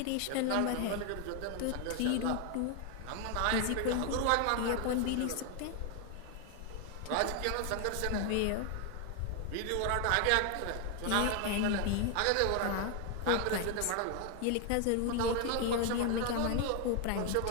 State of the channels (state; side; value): different; both; correlation 0.01